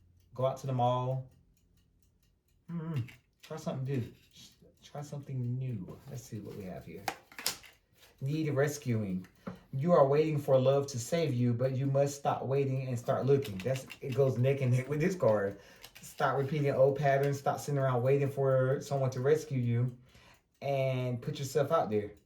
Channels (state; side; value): identical; both; correlation 1.00